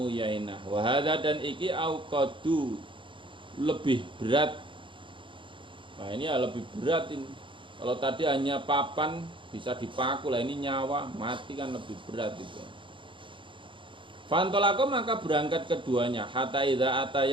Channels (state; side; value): late; left; 0.24 ms